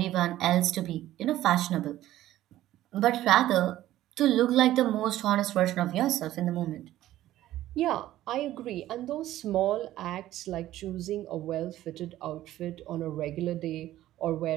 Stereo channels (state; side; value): quieter; left; 14.2 dB